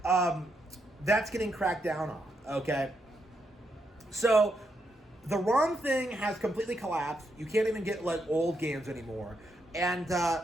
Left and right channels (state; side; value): normal; both; correlation 0.81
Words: that's getting cracked down on. Okay, so the ROM thing has completely collapsed. You can't even get like old games anymore. And